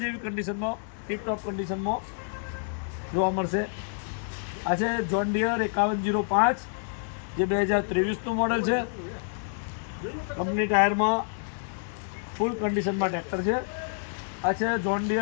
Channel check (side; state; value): right; silent; digital silence